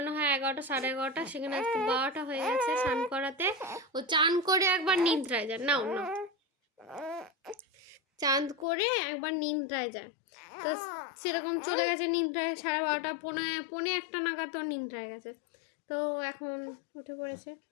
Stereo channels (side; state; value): right; drops out; at 8.7 s